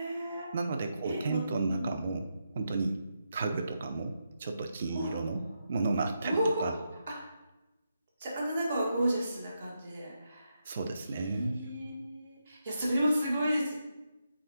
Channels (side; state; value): both; inverted; correlation -0.84